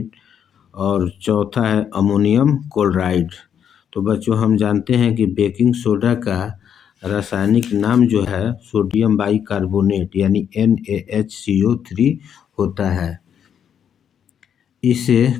और चौथा है अमोनियम क्लोराइड। तो बच्चों हम जानते हैं कि बेकिंग सोडा का रासायनिक नाम जो है सोडियम बाइकार्बोनेट यानी NaHCO3 होता है।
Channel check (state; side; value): quieter; right; 8.5 dB